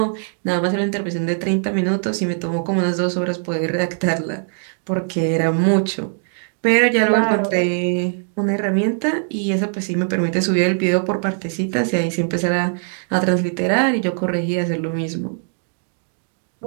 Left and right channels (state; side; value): silent; left; 62 dB below the other